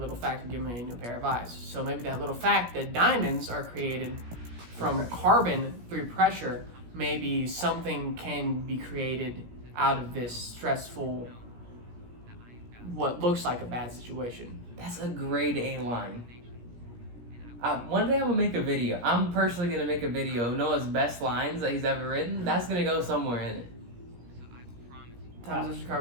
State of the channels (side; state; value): left; late; 17 ms